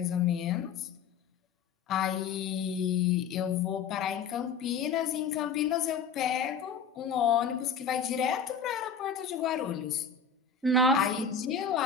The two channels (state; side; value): quieter; right; 6.1 dB